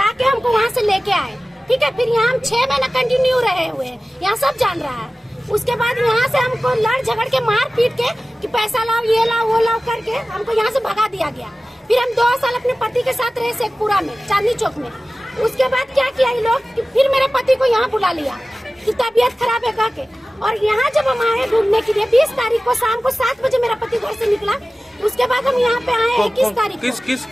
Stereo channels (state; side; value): normal; both; correlation 0.96